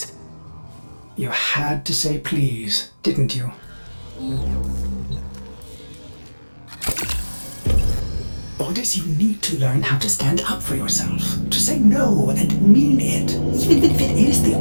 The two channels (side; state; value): both; inverted; correlation -1.00